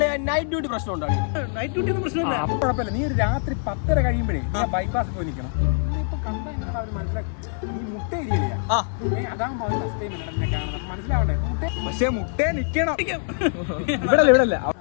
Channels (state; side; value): silent; right; 63 dB below the other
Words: നൈറ്റ് ഡ്യൂട്ടി പ്രശ്നം ഉണ്ടോ? നൈറ്റ് ഡ്യൂട്ടി ഒന്നും പ്രശ്നമില്ല. കുഴപ്പമില്ല. നീ ഒരു രാത്രി 10:30 കഴിയുമ്പോഴേ ബൈപ്പാസ് പോയി നിൽക്കണം. ഇപ്പൊ കണ്ടാ എങ്ങനെ അവര് മനസ്സിലാക്കി? നീ മുട്ട ഇരിയില്ല. അതാകുമ്പോ അവർ ഫസ്റ്റ് ടൈം എന്നെ കാണുന്നത് മനസ്സിലാവണ്ടേ? പക്ഷെ മുട്ടേ നിക്കണം ഇവിടെ ഇവിടല്ല.